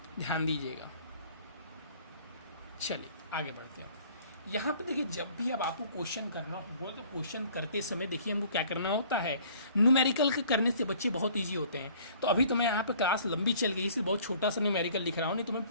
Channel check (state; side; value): inverted; both; correlation -0.54